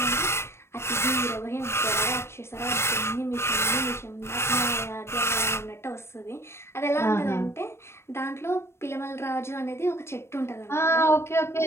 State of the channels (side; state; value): right; late; 0.12 ms